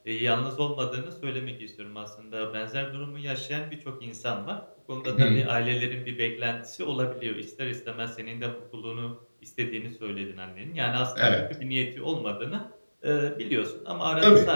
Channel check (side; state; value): both; inverted; correlation -1.00